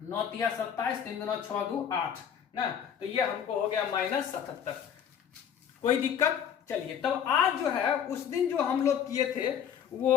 तिया 27, 3 दूना 6 2 8 ना, तो ये हमको हो गया -77। कोई दिक्कत? चलिए, तब आज जो है उस दिन जो हम लोग किए थे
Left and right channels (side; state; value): right; quieter; 8.6 dB